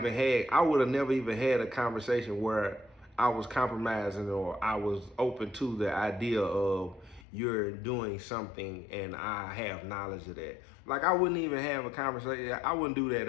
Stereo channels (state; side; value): drops out; right; at 7.2 s